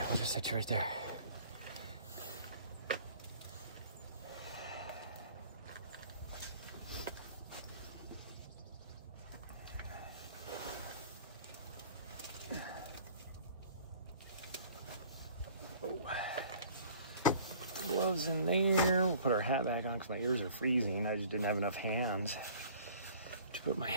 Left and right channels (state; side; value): inverted; both; correlation -0.51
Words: we'll just set you right there. gloves in there. We'll put our hat back on because my ears are freezing. I just didn't have enough hands to put my